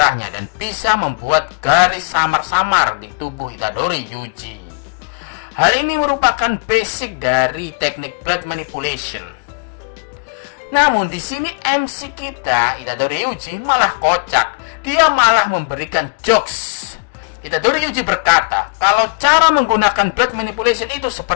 dan bisa membuat garis samar-samar di tubuh Itadori Yuji. Hal ini merupakan basic dari teknik Blood Manipulation. Namun di sini MC kita, Itadori Yuji, malah kocak. Dia malah memberikan jokes. Itadori Yuji berkata kalau cara menggunakan Blood Manipulation itu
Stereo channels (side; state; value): right; quieter; 38.4 dB